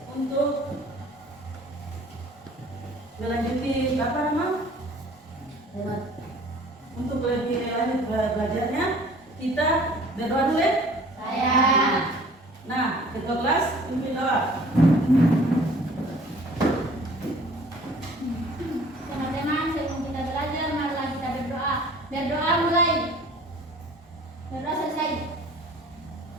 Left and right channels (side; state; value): both; normal; correlation 0.51